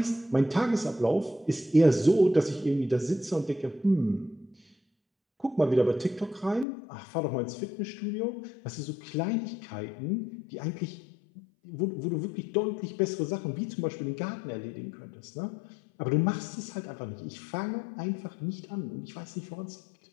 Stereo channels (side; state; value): right; drops out; at 6.7 s